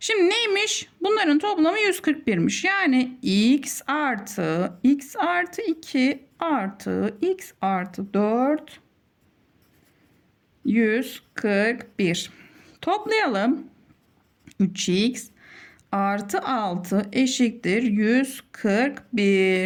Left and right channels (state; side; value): identical; both; correlation 1.00